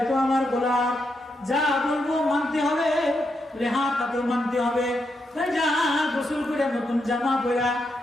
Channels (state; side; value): normal; both; correlation 0.82